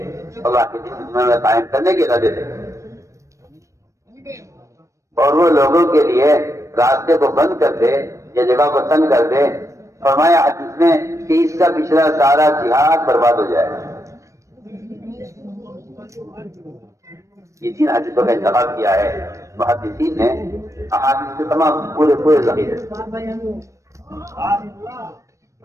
اللہ کے دین کی دنیا میں قائم کرنے کے ارادے سے، اور وہ لوگوں کے لیے راستے کو بند کر دے یا جگہ کو تنگ کر دے. فرمایا حدیث میں کہ اس کا پچھلا سارا جہاد برباد ہو جائے. یہ تین حدیثوں کا انتخاب کیا ہے محدثین نے احادیث کے تمام پورے ذخیرے.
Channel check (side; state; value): left; late; 0.15 ms